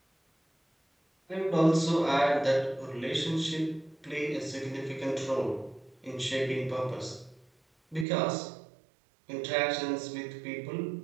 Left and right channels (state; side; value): drops out; left; at 8.1 s